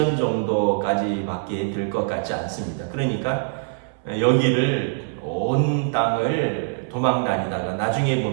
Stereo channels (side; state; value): left; silent; 63 dB below the other